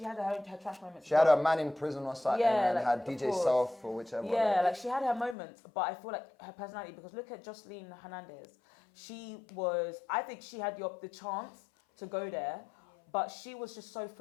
had her trash moments. She had a man in prison or something, Yeah, and like, had of DJ course. Self or whichever. Yeah, like she had her moments, but I feel like her personality, because look at Jocelyn Hernandez. I think she had the chance to go there, but she was just so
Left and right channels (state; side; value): drops out; right; at 5.4 s